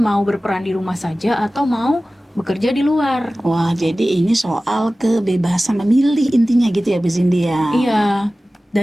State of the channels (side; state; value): both; normal; correlation 0.97